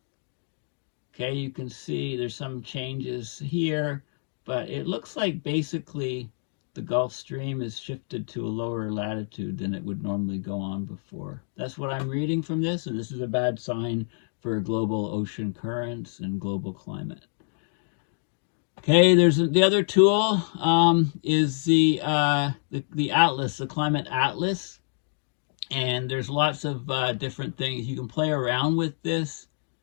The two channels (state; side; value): silent; right; digital silence